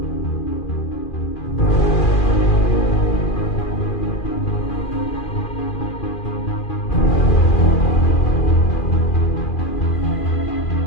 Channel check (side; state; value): right; late; 2.4 ms